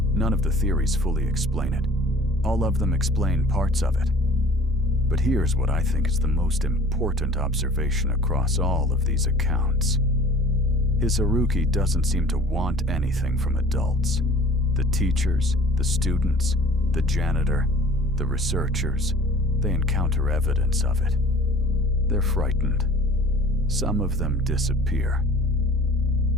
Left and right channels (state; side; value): normal; both; correlation 0.47